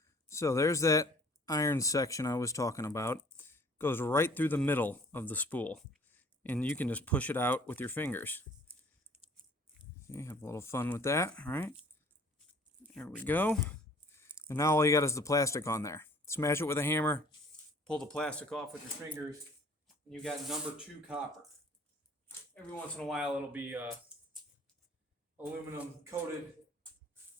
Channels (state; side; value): normal; both; correlation 0.54